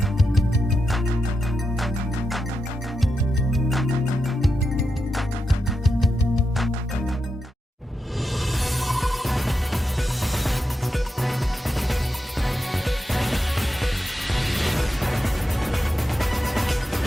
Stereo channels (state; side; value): normal; both; correlation 0.87